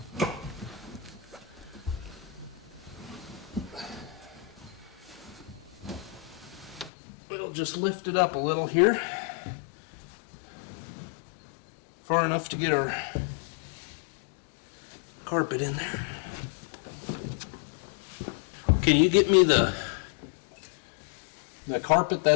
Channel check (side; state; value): right; drops out; at 6.9 s